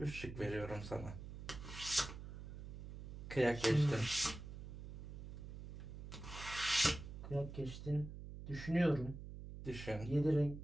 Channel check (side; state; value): right; noise; hum, 10 dB below the sound